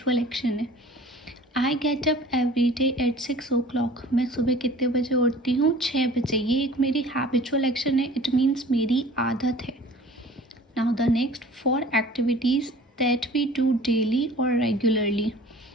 एक्शन है। I get up every day at 6 o'clock, मैं सुबह कितने बजे उठती हूँ, 6 बजे। ये एक मेरी हैबिचुअल एक्शन है, इट मीन्स मेरी आदत है। Now the next, for activities that we do daily और रेगुलरली,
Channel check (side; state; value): both; normal; correlation 0.46